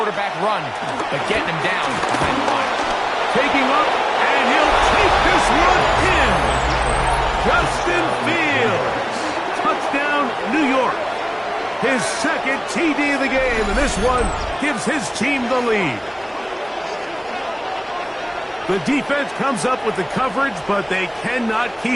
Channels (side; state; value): both; identical; correlation 1.00